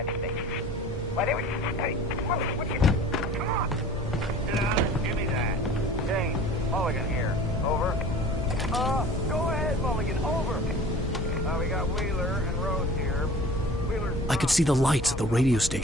But anyway, hey, Mulligan, what you... Come on. Sit down and give me that. James, Mulligan here. Over. Go ahead, Mulligan. Over. We got Wheeler and Rose here. Wheeler's... I could see the lights of the radio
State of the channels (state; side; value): normal; both; correlation 0.43